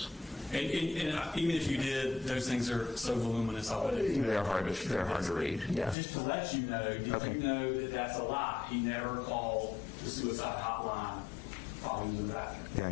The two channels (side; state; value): right; drops out; at 6.0 s